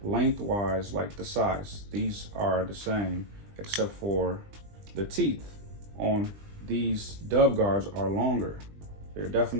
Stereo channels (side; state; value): left; late; 20 ms